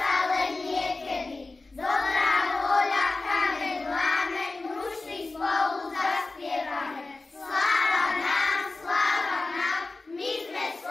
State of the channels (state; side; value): quieter; right; 3.4 dB